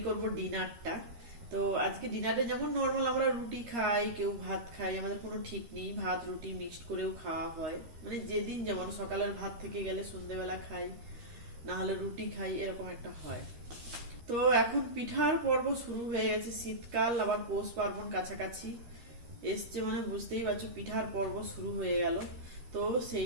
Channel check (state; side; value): late; left; 13 ms